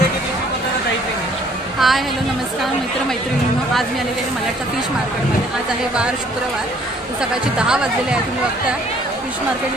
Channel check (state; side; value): normal; both; correlation 0.60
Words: hello नमस्कार मित्र मैत्रिणींनो, आज मी आलेले आहे मलाडचा फिश मार्केटमध्ये। आज आहे वार शुक्रवार, सकाळचे 10 वाजलेले आहे। तुम्ही बघता फिश